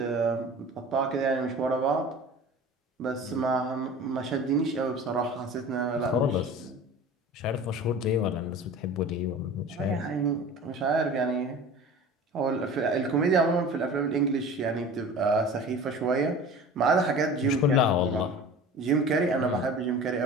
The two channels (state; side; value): normal; both; correlation 0.39